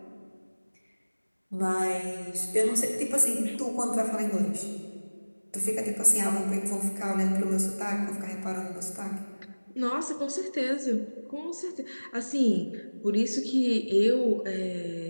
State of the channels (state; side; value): inverted; both; correlation -1.00